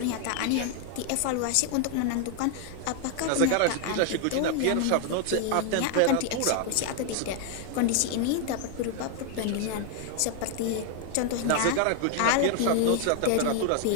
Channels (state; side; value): different; both; correlation 0.00